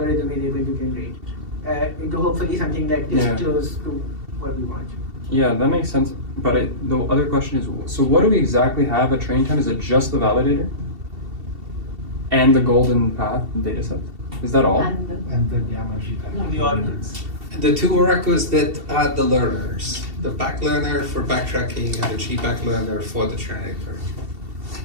is able to generate into hopefully something that is Yeah. close to what we want. Yeah, that makes sense. But the other question is, so what do we exactly have at training time? Is it just the validator and the golden path data set? Is that all? And the gamma G pattern. The ordinals. The two oracles that are the learners, the back learner for backtracking and the G-back learner for the generator.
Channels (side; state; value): left; late; 2.7 ms